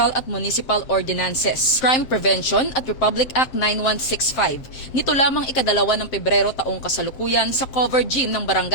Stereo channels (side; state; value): right; late; 7.5 ms